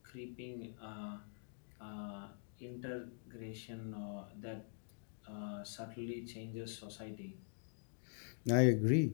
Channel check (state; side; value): silent; right; digital silence